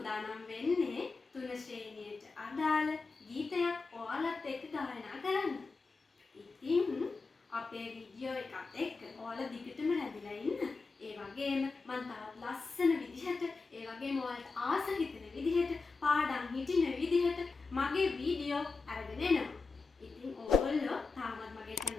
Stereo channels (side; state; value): right; quieter; 4.2 dB